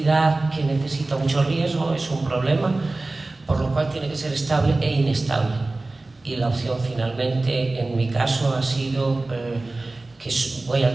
que necesita mucho riesgo, es un problema, por lo cual tiene que ser estable e inestable. Y la opción finalmente, en mi caso, ha sido que voy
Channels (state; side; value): quieter; left; 3.1 dB